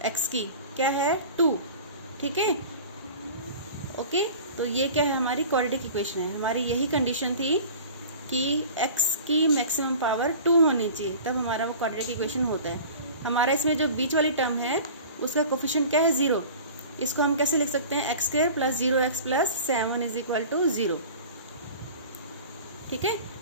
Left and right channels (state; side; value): inverted; both; correlation -0.40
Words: x की क्या है? 2। ठीक है, ओके, तो ये क्या है? हमारी क्वाड्रेटिक इक्वेशन है। हमारी यही कंडीशन थी कि x की मैक्सिमम पावर 2 होनी चाहिए, तब हमारा वो क्वाड्रेटिक इक्वेशन होता है। हमारा इसमें जो बीच वाली टर्म है उसका कोफिशिएंट क्या है? 0। इसको हम कैसे लिख सकते हैं? x² plus 0x plus 7 is equal to 0। ठीक है,